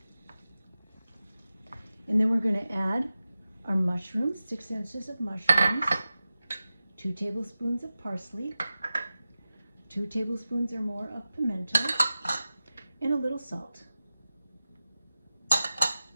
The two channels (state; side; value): inverted; both; correlation -0.94